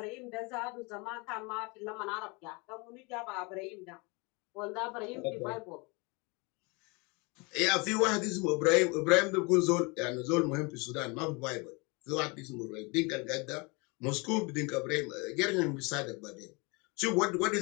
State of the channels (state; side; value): quieter; right; 28.7 dB